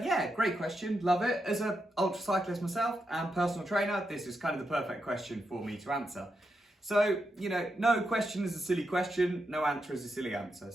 great question, love it. As an ultra cyclist myself and personal trainer, this is kind of the perfect question for me to answer. So, you know, no question is a silly question, no answer is a silly answer.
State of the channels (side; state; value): both; normal; correlation 0.85